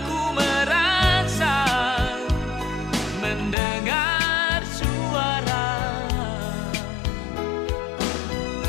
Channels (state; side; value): drops out; right; at 3.6 s